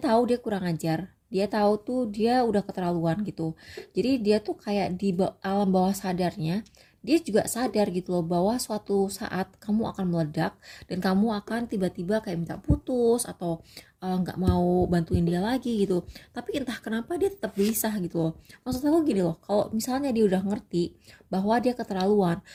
dia kurang ajar. Dia tahu tuh dia udah keterlaluan gitu. Jadi dia tuh kayak di alam bawah sadarnya, dia juga sadar gitu loh bahwa suatu saat kamu akan meledak dan kamu akan tiba-tiba kayak minta putus atau nggak mau bantuin dia lagi gitu. Tapi entah kenapa dia tetap gelisah gitu loh. Maksud aku gini loh, kalau misalnya dia udah ngerti bahwa dia keterlaluan,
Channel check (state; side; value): identical; both; correlation 1.00